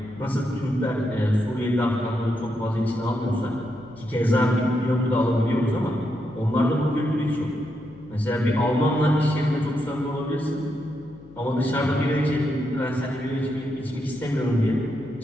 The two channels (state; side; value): noise; left; hum, 22 dB below the sound